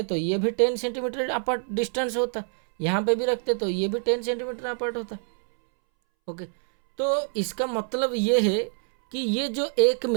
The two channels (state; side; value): silent; left; 61 dB below the other